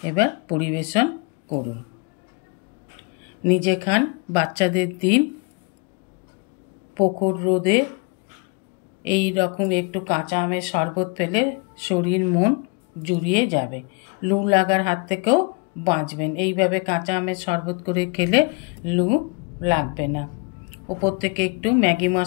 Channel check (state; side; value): quieter; right; 31.2 dB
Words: এবার পরিবেশন করুন। নিজে খান, বাচ্চাদের দিন। প্রখর রোদে এই রকম একটু কাঁচা আমের শরবত পেলে শরীর মন জুড়িয়ে যাবে। লু লাগার হাত থেকেও বাঁচবেন। এইভাবে কাঁচা আমের শরবত করে খেলে লু লাগবে না। ওপর থেকে একটু ম্যাগি